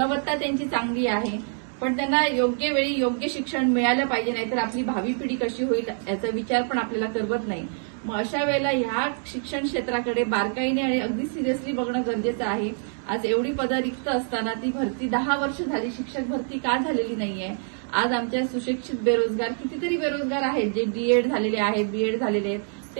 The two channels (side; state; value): left; silent; 59 dB below the other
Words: त्यांची चांगली आहे, पण त्यांना योग्य वेळी योग्य शिक्षण मिळालं पाहिजे, नाहीतर आपली भावी पिढी कशी होईल याचा विचार पण आपल्याला करवत नाही। मग अशा वेळेला ह्या शिक्षण क्षेत्राकडे बारकाईने आणि अगदी सिरियसली बघणं गरजेचं आहे। आज एवढी पदं रिक्त असताना ती भरती 10 वर्ष झाली, शिक्षक भरती का झालेली नाहीये? आज आमच्या सुशिक्षित बेरोजगार कितीतरी बेरोजगार आहेत, जे डीएड झालेले आहेत, बीएड झालेले आहेत, ते